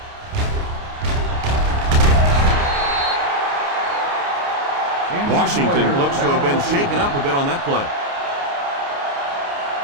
Washington looks to have been shaken up a bit on that play.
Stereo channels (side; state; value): left; late; 29 ms